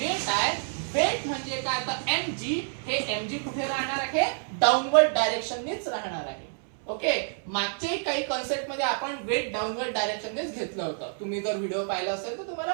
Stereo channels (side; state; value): left; silent; 59 dB below the other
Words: आहे, वेट म्हणजे काय, तर mg, हे mg कुठे राहणार आहे, डाऊनवर्ड डायरेक्शननीच राहणार आहे. ओके, मागचे काही कन्सेप्ट मध्ये आपण वेट डाऊनवर्ड डायरेक्शननेच घेतलं होतं. तुम्ही जर व्हिडिओ पाहिला असेल तर तुम्हाला